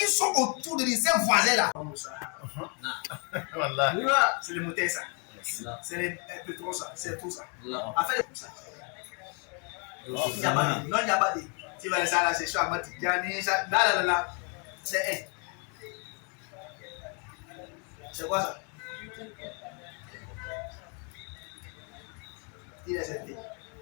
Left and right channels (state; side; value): quieter; right; 37.5 dB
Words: sont autour de ces voisins là. C'est les moutons ça. C'est les pétrons ça. C'est tout ça. En fait, c'est ça. Non, il n'y a pas de. Tu vas ça là, c'est chaud. Là. C'est un. C'est quoi ça?